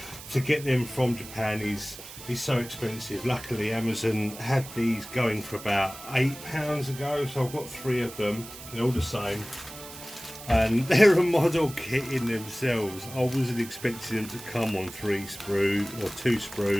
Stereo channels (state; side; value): noise; right; hiss, 14 dB below the sound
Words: to get them from Japan is so expensive. Luckily Amazon had these going for about £8 ago, so I've got 3 of them. They're all the same, and they're a model kit in themselves. I wasn't expecting them to come on 3 sprues or 2